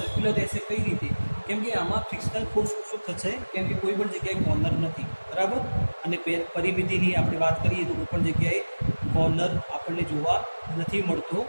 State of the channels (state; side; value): inverted; both; correlation -1.00